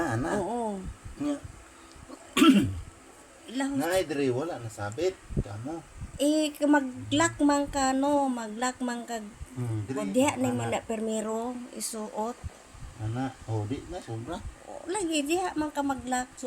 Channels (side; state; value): both; identical; correlation 1.00